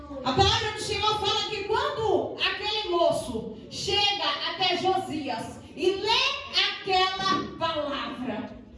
A palavra do Senhor fala que quando aquele moço chega até Josias e lê aquela palavra,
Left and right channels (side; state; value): both; identical; correlation 1.00